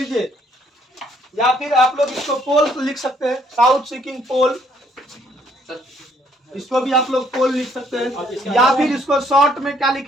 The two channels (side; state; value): both; normal; correlation 0.67